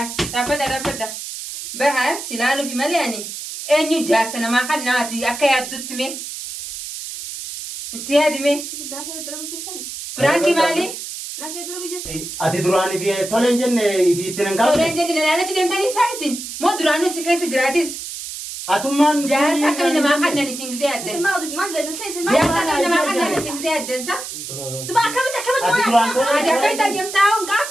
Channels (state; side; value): noise; right; hiss, 8 dB below the sound